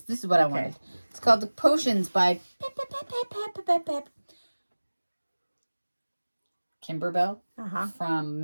this is what I wanted. It's called The Potions by Kimberbell from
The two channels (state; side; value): inverted; both; correlation -1.00